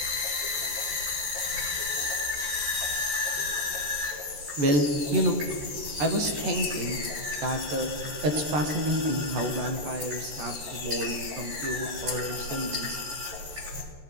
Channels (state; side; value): late; left; 14 ms